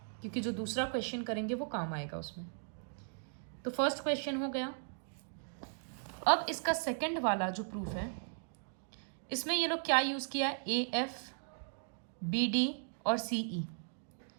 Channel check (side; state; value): left; silent; digital silence